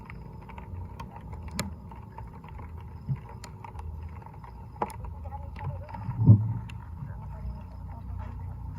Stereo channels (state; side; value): identical; both; correlation 1.00